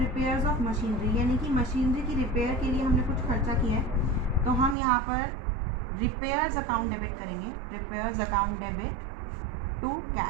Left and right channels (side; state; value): left; drops out; at 4.8 s